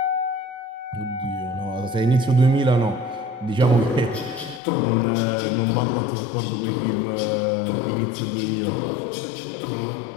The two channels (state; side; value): drops out; right; at 4.6 s